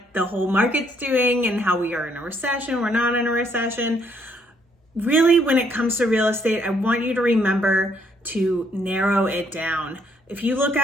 the whole market's doing and how we are in a recession, we're not in a recession. Really, when it comes to real estate, I want you to remember to narrow it down. If you look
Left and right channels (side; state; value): both; normal; correlation 0.69